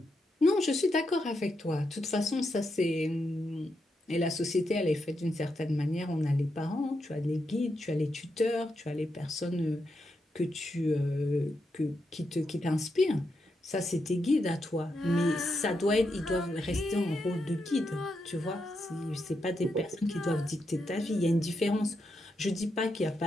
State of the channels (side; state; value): both; normal; correlation 0.83